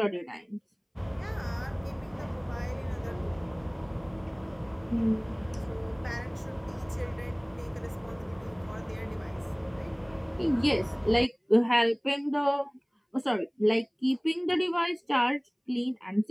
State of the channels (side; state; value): both; identical; correlation 1.00